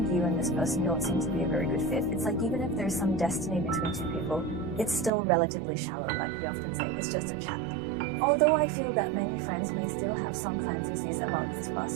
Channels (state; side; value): drops out; left; at 5.1 s